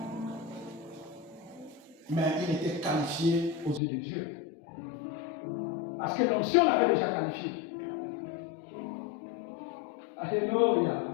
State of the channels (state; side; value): drops out; right; at 3.8 s